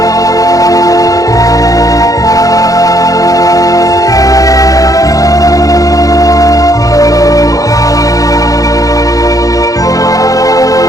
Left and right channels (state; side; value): late; right; 0.17 ms